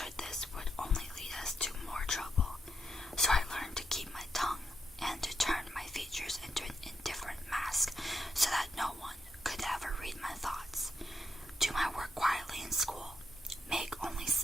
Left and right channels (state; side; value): normal; both; correlation 0.82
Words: this would only lead us to more trouble, so I learned to keep my tongue and to turn my features into an indifferent mask so that no one could ever read my thoughts. Do my work quietly in school, make only